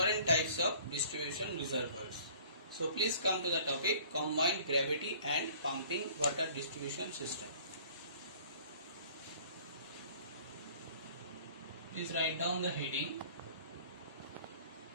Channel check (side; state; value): both; inverted; correlation -0.50